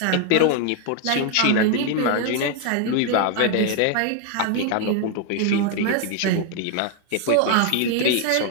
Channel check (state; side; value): different; both; correlation 0.00